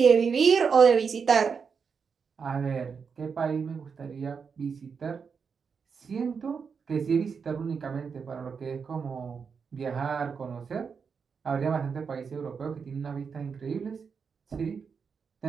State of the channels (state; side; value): quieter; left; 5.9 dB